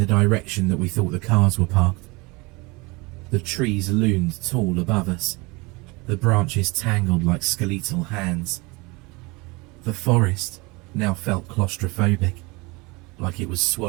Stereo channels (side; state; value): left; quieter; 25.7 dB